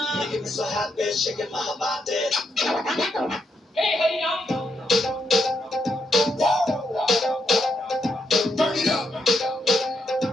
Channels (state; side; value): normal; both; correlation 0.80